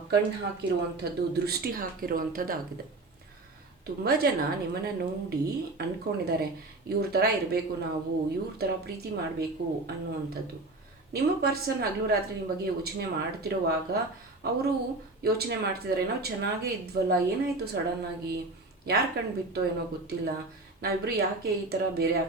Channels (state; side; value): quieter; left; 3.1 dB